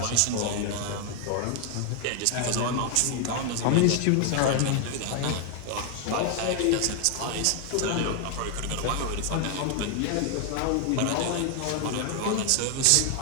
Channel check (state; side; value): different; both; correlation 0.00